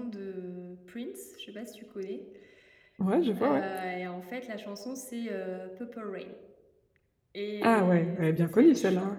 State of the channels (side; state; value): both; identical; correlation 1.00